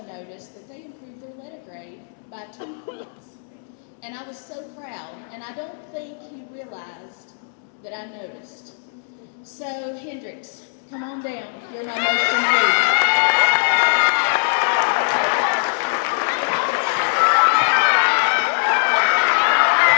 noticed that they improved their letter grade by 2 points. And I was so proud, and I don't think he realized that I noticed. So, Hendrix, come on down. You're my most improved.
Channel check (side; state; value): right; silent; digital silence